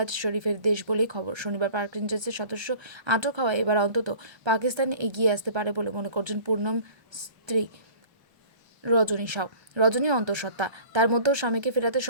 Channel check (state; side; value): late; left; 1.3 ms